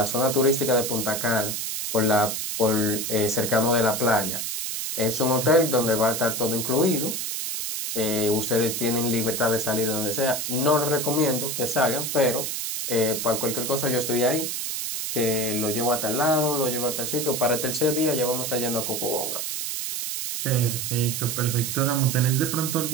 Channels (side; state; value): right; noise; hiss, 3 dB below the sound